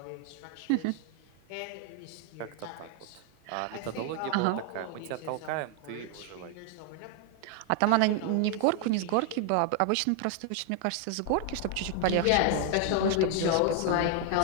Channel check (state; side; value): different; both; correlation 0.00